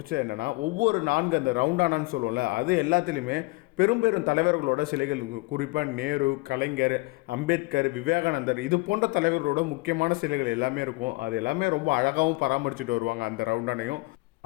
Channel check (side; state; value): right; quieter; 24.9 dB